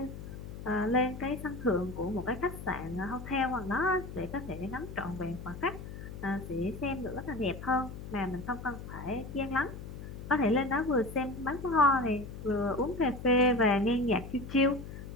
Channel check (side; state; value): left; noise; hum, 11 dB below the sound